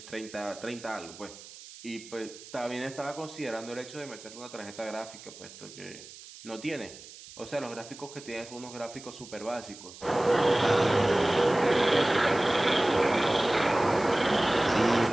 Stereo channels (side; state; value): right; noise; hiss, 17 dB below the sound